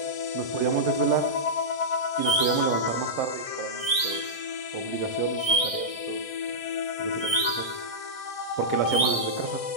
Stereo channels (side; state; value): right; late; 1.6 ms